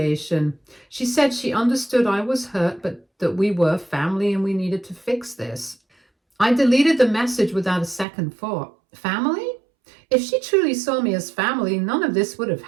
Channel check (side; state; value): left; drops out; at 8.1 s